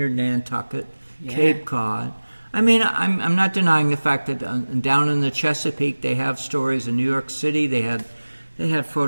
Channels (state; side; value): inverted; both; correlation -1.00